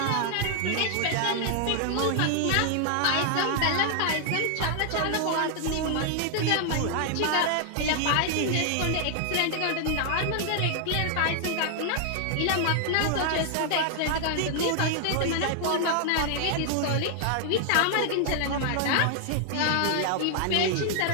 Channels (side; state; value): both; different; correlation 0.00